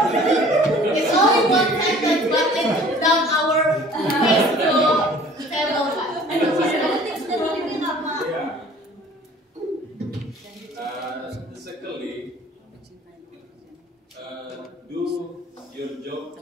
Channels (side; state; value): both; normal; correlation 0.50